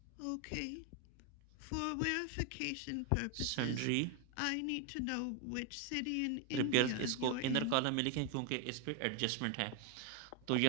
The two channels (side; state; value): both; different; correlation 0.01